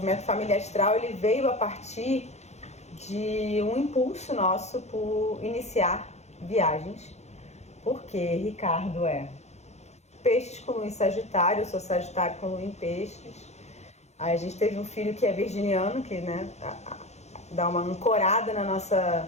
Família Astral ele veio a partir de um impulso nosso por iniciar viagens, porque Ricardo é Peixes com Lua em Sagitário, eu sou Sagitário com Lua em Peixes. Aí a gente teve um filho que é virginiano, que dá uma ancorada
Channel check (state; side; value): late; right; 0.32 ms